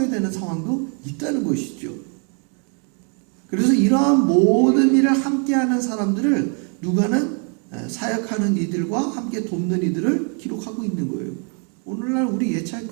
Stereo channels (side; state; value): left; quieter; 39.2 dB